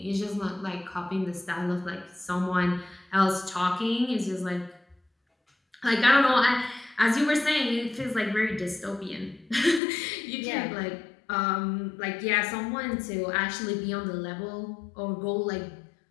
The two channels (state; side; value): drops out; right; at 9.8 s